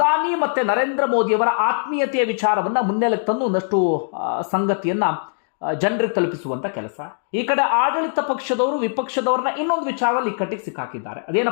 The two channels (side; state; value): right; silent; digital silence